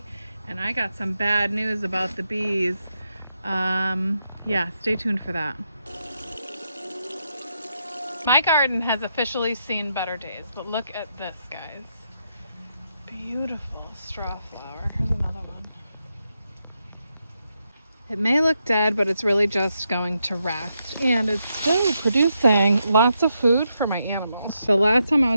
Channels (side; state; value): both; inverted; correlation -0.82